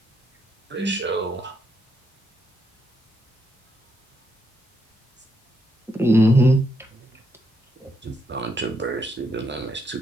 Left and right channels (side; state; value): both; normal; correlation 0.78